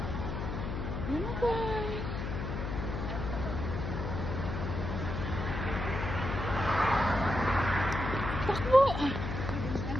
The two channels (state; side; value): noise; left; hum, 3 dB below the sound